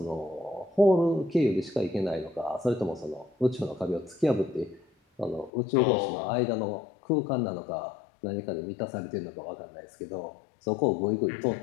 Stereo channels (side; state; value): right; drops out; at 5.5 s